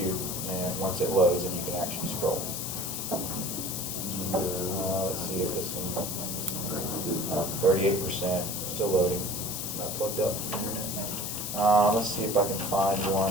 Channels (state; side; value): noise; left; hiss, 4 dB below the sound